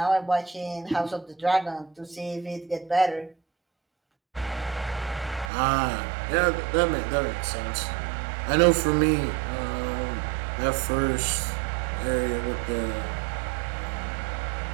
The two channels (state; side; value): drops out; left; at 5.5 s